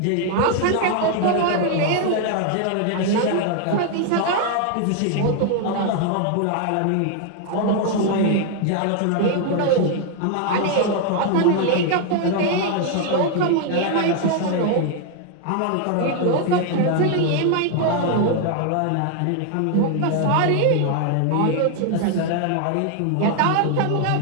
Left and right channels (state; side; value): different; both; correlation 0.00